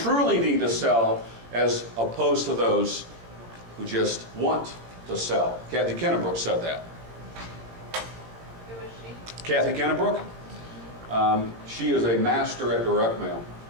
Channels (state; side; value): late; left; 18 ms